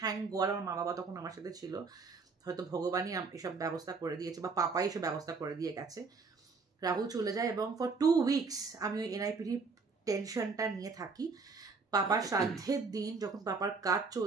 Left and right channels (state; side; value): quieter; left; 4.5 dB